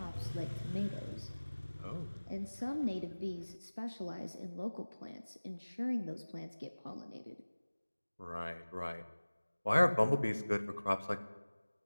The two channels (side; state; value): both; inverted; correlation -1.00